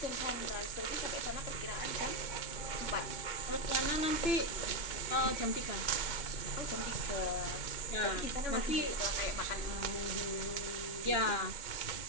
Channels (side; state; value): right; late; 2.2 ms